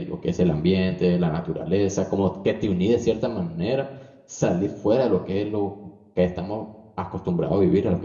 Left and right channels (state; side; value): identical; both; correlation 1.00